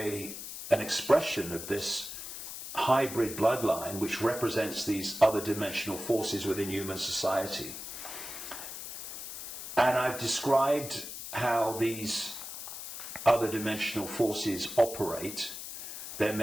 expression of this hybrid bloodline which represents these other dimensional forces within human society. And I've described how these other dimensional forces operate, their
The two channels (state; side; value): noise; left; hiss, 9 dB below the sound